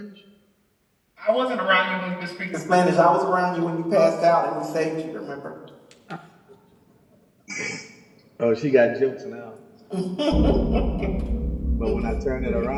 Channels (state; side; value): identical; both; correlation 1.00